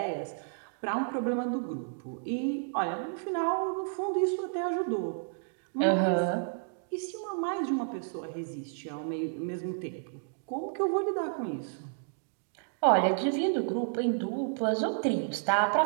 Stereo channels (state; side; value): silent; left; digital silence